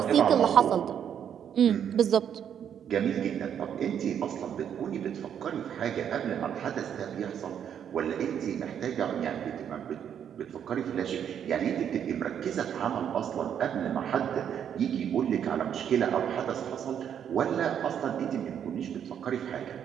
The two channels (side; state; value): left; quieter; 8.8 dB